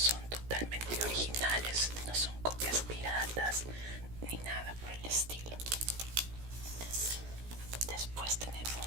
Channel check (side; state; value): left; late; 17 ms